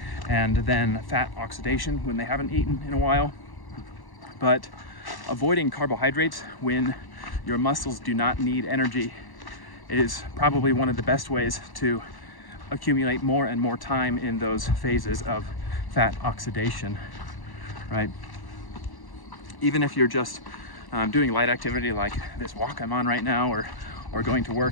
and then fat oxidation when they haven't eaten in a while. But avoiding carbohydrates when your muscles do not need energy is probably one of the best ways to accumulate more and more time in those phases of fat oxidation, right? Even if you're just doing light activity like this walk I'm on right now, or going to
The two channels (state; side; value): late; right; 1.1 ms